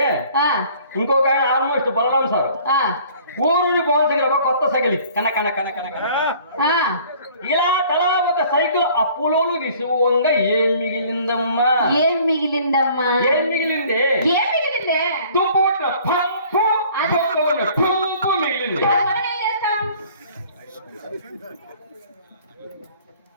ఇంకొక ఆయన ఆల్మోస్ట్ బలరాం సార్ ఊరూరి పవన్ దగ్గర కొత్త సైకిల్ కన కన కన కన కన ఇలా తలా ఒక సైకిల్ అప్పులోలు విసువంగా ఏం మిగిలిందమ్మా? ఏం మిగిలిందమ్మా? ఏం మిగిలింది? ఏం మిగిలిందే? తుప్పు పంపు పంపు మిగిలింది.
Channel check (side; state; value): both; inverted; correlation -0.53